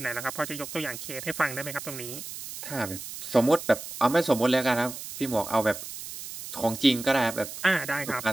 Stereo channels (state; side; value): noise; right; hiss, 10 dB below the sound